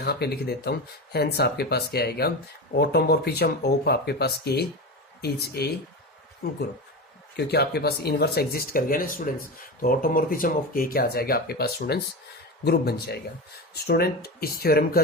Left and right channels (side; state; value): both; normal; correlation 0.23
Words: पे लिख देता हूँ, हेंस आपके पास क्या आएगा, ऑटोमॉर्फिज्म ऑफ आपके पास के इज ए ग्रुप, क्योंकि आपके पास इनवर्स एग्जिस्ट कर गया ना स्टूडेंट्स, तो ऑटोमॉर्फिज्म ऑफ के क्या आ जाएगा आपके पास स्टूडेंट्स, ग्रुप बन जाएगा। स्टूडेंट इस थ्योरम का